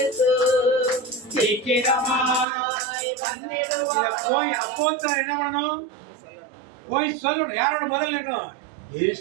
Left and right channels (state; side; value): drops out; left; at 2.5 s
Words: சீக்கிரமாய் வந்திடுவார். போய் அப்போஸ்தலன் என்ன பண்ணணும்? போய் சொல்லணும். யாரோட முதல்ல இருக்கணும்?